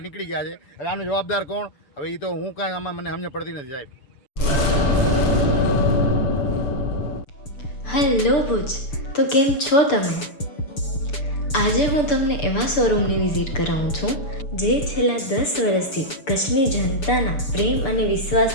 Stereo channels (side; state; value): right; late; 6.8 ms